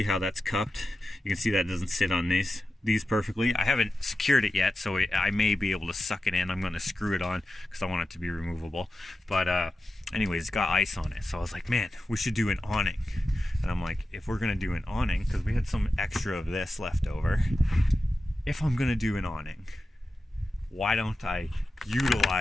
how that's cupped. You can see that doesn't sit on these perfectly. I haven't secured it yet, so I may be able to suck it in. I'm going to screw it on because I want it to be removable. But anyways, it's got ice on it, so I was like, man, we should do an awning. And I'm like, if we're going to do an awning, because we had some extra of this left over, if I'm going to do an awning, why don't I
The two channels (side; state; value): both; normal; correlation 0.92